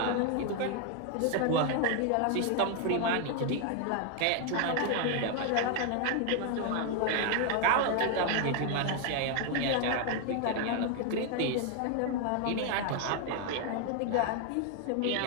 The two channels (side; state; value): both; different; correlation 0.01